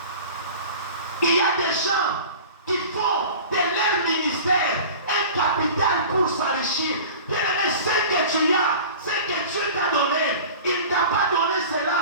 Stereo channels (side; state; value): both; inverted; correlation -0.39